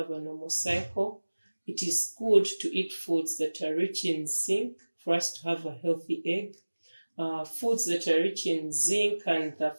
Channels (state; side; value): inverted; both; correlation -1.00